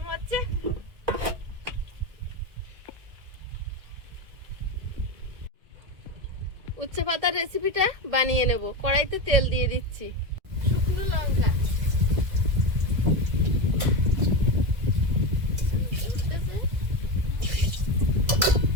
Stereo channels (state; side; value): late; left; 2.0 ms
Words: হচ্ছে। উচ্ছে পাতার রেসিপিটা বানিয়ে নেব। কড়াইতে তেল দিয়ে দিচ্ছি, শুকনো লঙ্কা,